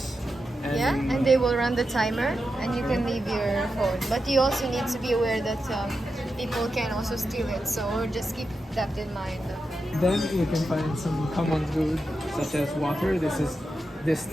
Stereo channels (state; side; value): normal; both; correlation 0.89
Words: and they will run the timer and you can leave your phone. But you also need to be aware that people can also steal it, so just keep that in mind. Then you can find some common food such as water. This is